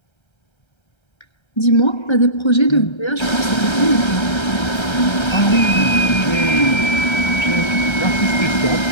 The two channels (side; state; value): right; late; 1.3 ms